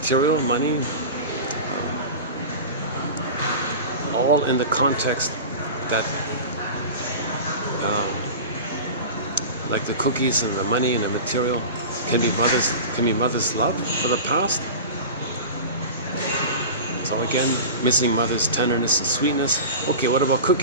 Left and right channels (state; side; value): inverted; both; correlation -0.30